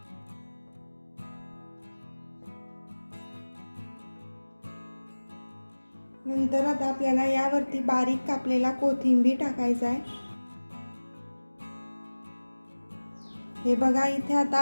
नंतर आता आपल्याला यावरती बारीक कापलेला कोथिंबीर टाकायचा आहे. हे बघा इथे आता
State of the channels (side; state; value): both; inverted; correlation -1.00